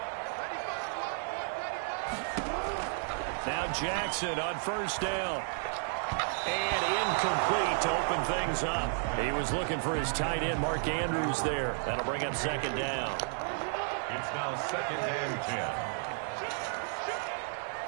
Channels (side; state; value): left; silent; 56 dB below the other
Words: Now Jackson on first down. And incomplete to open things up. He was looking for his tight end, Mark Andrews, there. That'll bring up second down. It's now 2nd and 10.